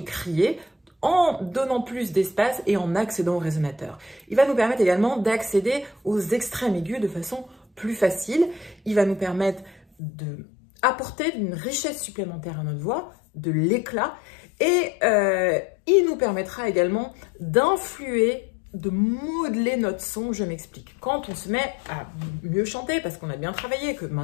crier, en donnant plus d'espace et en accédant au résonateur. Il va nous permettre également d'accéder aux extrêmes aigus de façon plus facile. Il va nous permettre d'apporter une richesse supplémentaire à notre voix, de l'éclat, et il nous permettra également d'influer, de modeler notre son. Je m'explique. Quand on se met à mieux chanter, parce qu'on a bien travaillé, que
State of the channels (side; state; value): right; drops out; at 9.8 s